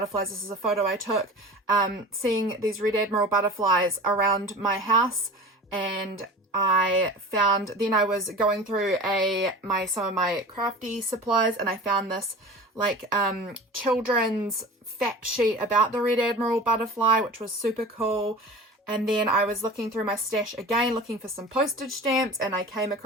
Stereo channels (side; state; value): both; normal; correlation 0.36